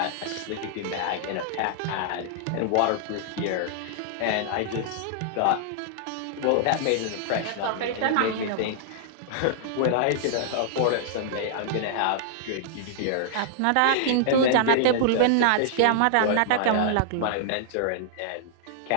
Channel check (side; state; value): both; different; correlation -0.01